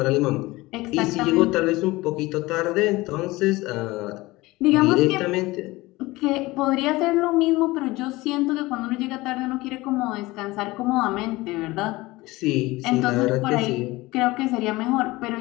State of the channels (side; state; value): right; quieter; 20.5 dB